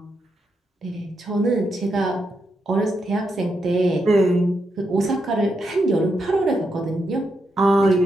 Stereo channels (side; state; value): both; normal; correlation 0.82